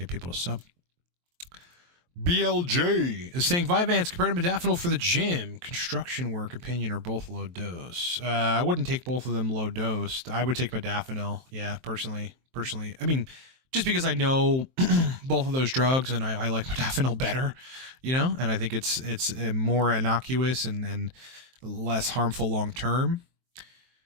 people to sub. BLJ is saying Vyvanse compared to modafinil for the gym, construction work, opinion, or both low dose. I wouldn't take both of them low dose. I would take modafinil. Yeah, personally. I mean, just because I know both of those drugs and I like modafinil better, and I think it's more innocuous and less harmful long term,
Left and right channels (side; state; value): left; late; 23 ms